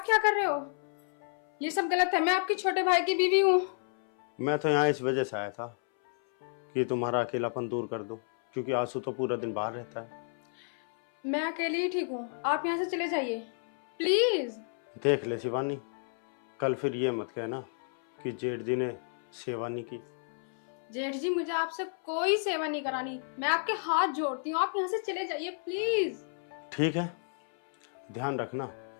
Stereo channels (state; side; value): silent; right; 57 dB below the other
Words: क्या कर रहे हो? ये सब गलत है, मैं आपके छोटे भाई की बीवी हूँ। मैं तो यहाँ इस वजह से आया था कि तुम्हारा अकेलापन दूर कर दो, क्योंकि आंसू तो पूरा दिन बाहर रहता है। मैं अकेले ही ठीक हूँ, आप यहाँ से चले जाइए प्लीज। देख ले शिवानी, कल फिर ये मत कहना कि जेठ जी ने शिवानी की जेठ जी मुझे आपसे कोई सेवा नहीं करानी, मैं आपके हाथ जोड़ती हूँ, आप यहाँ से चले जाइए प्लीज। ठीक है, ध्यान रखना,